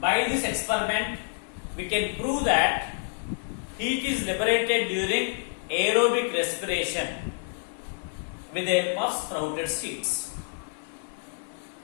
By this experiment, we can prove that heat is liberated during aerobic respiration with the help of sprouted seeds.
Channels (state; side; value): silent; right; digital silence